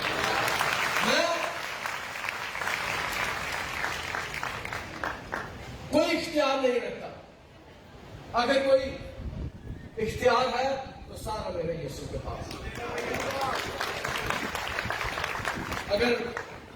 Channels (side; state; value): both; identical; correlation 1.00